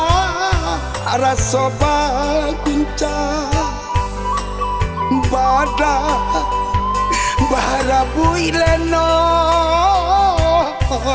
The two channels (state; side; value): identical; both; correlation 1.00